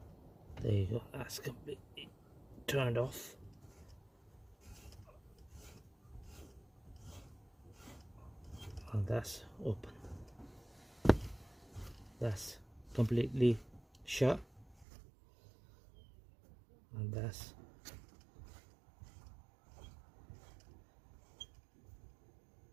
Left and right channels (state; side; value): drops out; left; at 14.9 s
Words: There you go, that's completely turned off. And that's open. That's completely shut. And that's